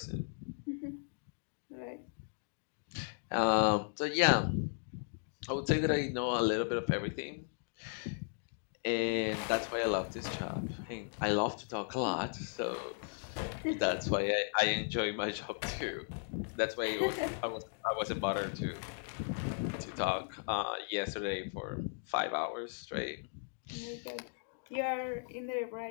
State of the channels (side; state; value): right; silent; digital silence